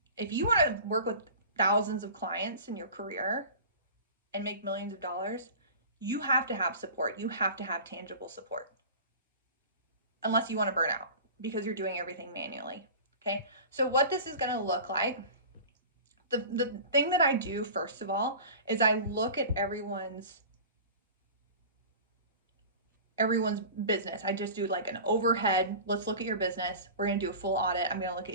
If you want to work with thousands of clients in your career and make millions of dollars, you have to have support. You have to have tangible support. Unless you want to burn out because you're doing everything manually. Okay? So what this is going to look like, the thing that I do first of all is I look at everyone's business. I just do an overhead. Let's look at your business. We're going to do a full audit. I'm going to look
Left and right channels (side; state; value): both; inverted; correlation -0.37